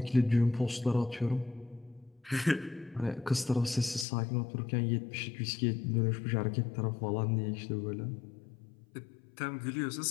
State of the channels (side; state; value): right; drops out; at 4.0 s